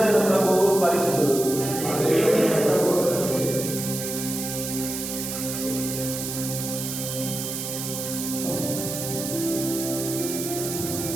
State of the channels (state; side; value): noise; right; hiss, 5 dB below the sound